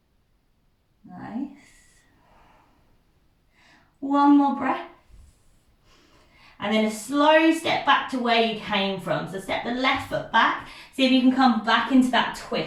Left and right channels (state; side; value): identical; both; correlation 1.00